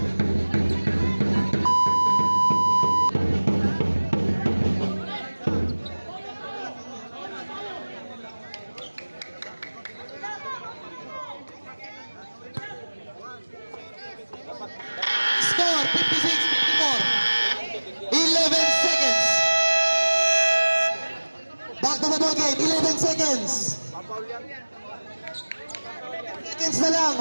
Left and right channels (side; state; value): both; inverted; correlation -1.00